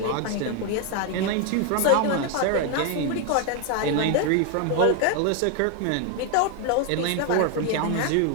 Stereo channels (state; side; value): different; both; correlation 0.01